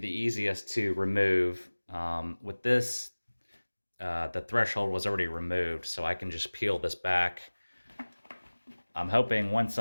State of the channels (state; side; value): inverted; both; correlation -1.00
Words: easiest to remove. With this, the threshold was already removed, so I can just peel this back. I'm hoping once